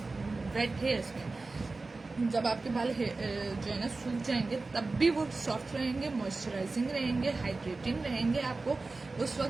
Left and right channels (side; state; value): left; quieter; 3.6 dB